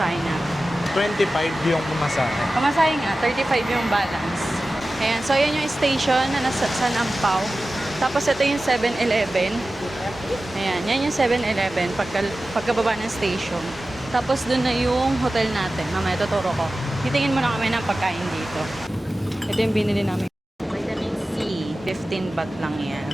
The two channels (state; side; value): normal; both; correlation 0.95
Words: na. 25 yung pumasahe. Pamasahe nga, 35 yung balance. Ayan, so ayan yung station na nasa Sanampao. Tapos ito yung 7-Eleven. Ayan, yan yung 7-Eleven pagkababa ng station. Tapos dun na yung hotel natin. Mamaya tuturo ko. Titingin muna kami ng pagkain dito. Ito yung binili namin. Vitamin C, 15 baht lang yan.